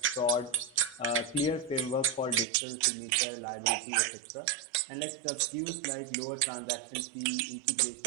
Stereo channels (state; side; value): drops out; left; at 2.5 s